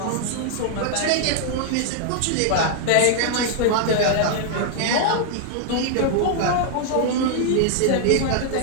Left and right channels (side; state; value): both; different; correlation 0.00